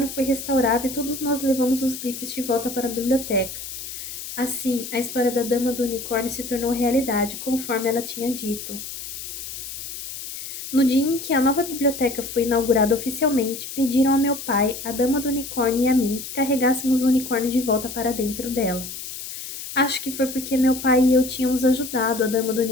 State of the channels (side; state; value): left; noise; hiss, 9 dB below the sound